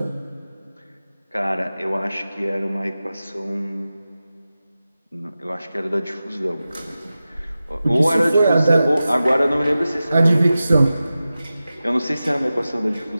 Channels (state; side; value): inverted; both; correlation -0.94